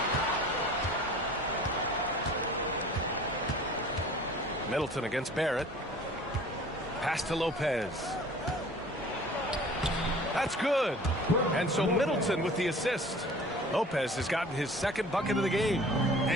Middleton against Barrett. Pass to Lopez. That's good. And so Middleton with the assist. Lopez has gotten his second bucket of the game.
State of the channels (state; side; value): normal; both; correlation 0.46